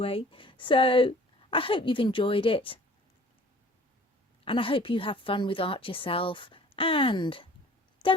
So I hope you've enjoyed it, and I hope you have fun with art yourself. And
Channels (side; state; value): both; normal; correlation 0.50